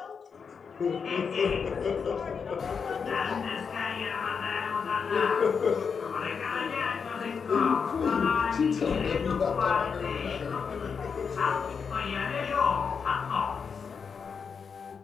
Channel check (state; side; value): quieter; right; 6.0 dB